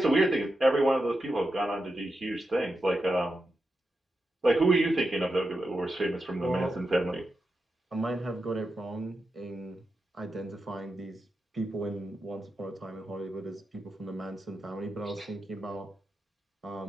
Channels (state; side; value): normal; both; correlation 0.88